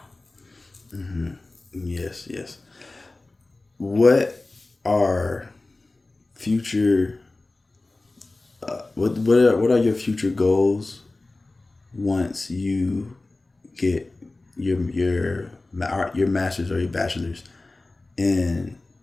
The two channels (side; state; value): right; quieter; 3.1 dB